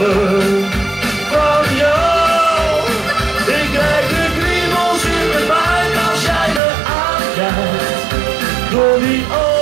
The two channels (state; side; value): drops out; left; at 6.6 s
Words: van jou. Ik krijg de kriebels in mijn buik als jij me aankijkt. Door die